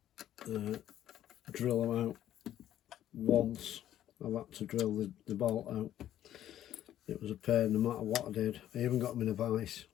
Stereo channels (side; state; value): right; quieter; 11.9 dB